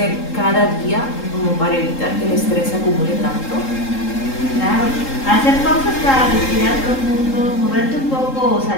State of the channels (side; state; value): right; late; 3.8 ms